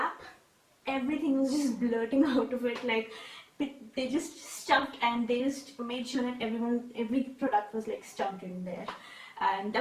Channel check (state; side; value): identical; both; correlation 1.00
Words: everything was just blurting out of it. Like they just stuffed, and they just made sure that every product was like stuffed in there. And